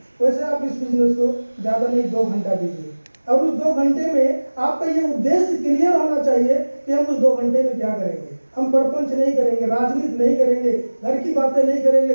वैसे आप इस बिजनेस को ज़्यादा नहीं 2 घंटा दीजिए। और उस 2 घंटे में आपका ये उद्देश्य क्लियर होना चाहिए कि हम उस 2 घंटे में क्या करेंगे। हम परपंच नहीं करेंगे, राजनीति नहीं करेंगे, घर की बातें नहीं करेंगे,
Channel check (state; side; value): inverted; both; correlation -1.00